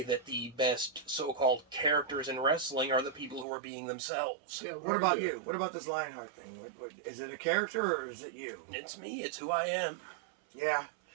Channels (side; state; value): left; drops out; at 3.5 s